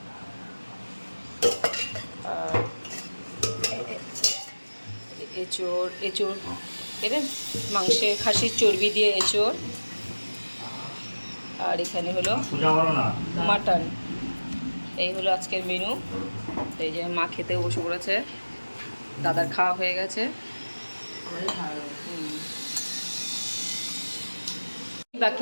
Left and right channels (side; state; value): both; inverted; correlation -1.00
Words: এঁচোড় এঁচোড় এদের মাংসের খাসির চর্বি দিয়ে এঁচোড়, আর এখানে হলো মাটন। এই হলো আজকের মেনু। এই যে মা খেতেও বসে পড়েছে, দাদার খাওয়া হয়ে গেছে। বাকি